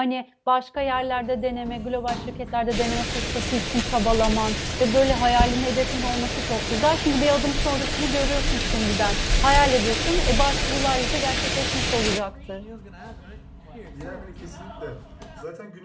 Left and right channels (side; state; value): both; identical; correlation 1.00